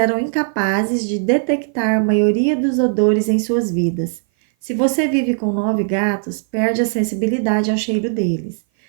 incapazes de detectar a maioria dos odores em suas vidas. Se você vive com 9 gatos, perde a sensibilidade ao cheiro deles.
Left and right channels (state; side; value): silent; left; 57 dB below the other